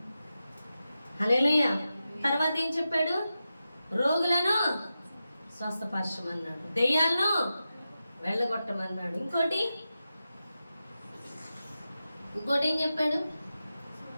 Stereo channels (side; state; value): both; inverted; correlation -0.91